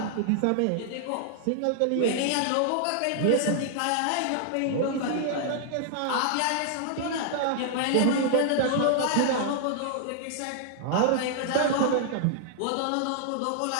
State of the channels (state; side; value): different; both; correlation -0.01